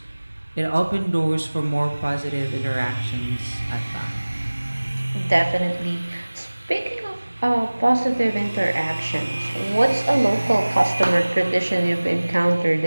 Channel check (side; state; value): both; inverted; correlation -1.00